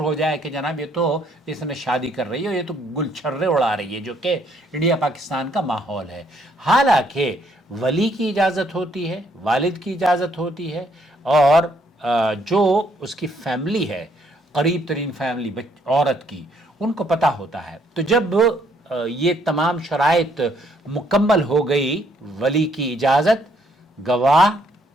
ہو جائے کہ جناب یہ تو اس نے شادی کر رہی ہے، یہ تو گل چھرے اڑا رہی ہے، جو کہ انڈیا پاکستان کا ماحول ہے. حالانکہ ولی کی اجازت ہوتی ہے، والد کی اجازت ہوتی ہے، اور جو اس کی فیملی ہے، قریب ترین فیملی عورت کی، ان کو پتہ ہوتا ہے. تو جب یہ تمام شرائط مکمل ہو گئی، ولی کی اجازت، گواہ،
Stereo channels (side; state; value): both; normal; correlation 0.69